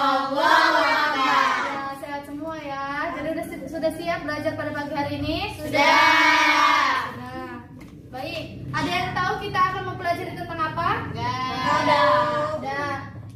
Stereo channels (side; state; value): both; identical; correlation 1.00